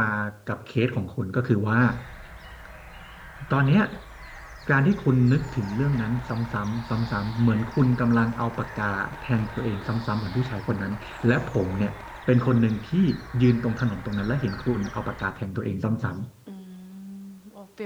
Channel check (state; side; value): identical; both; correlation 1.00